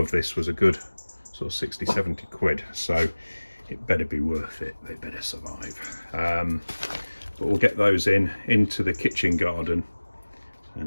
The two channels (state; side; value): inverted; both; correlation -1.00